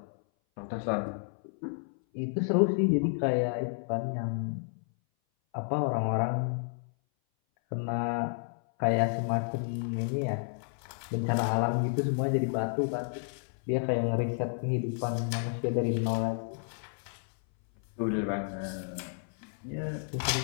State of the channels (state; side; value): silent; right; 57 dB below the other